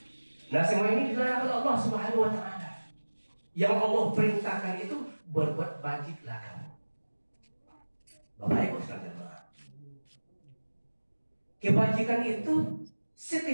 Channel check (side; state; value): both; inverted; correlation -1.00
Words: Nah, semua ini dilarang oleh Allah Subhanahu wa taala. Yang Allah perintahkan itu berbuat bajiklah kamu. Bapak Ibu sekalian jemaah, kebajikan itu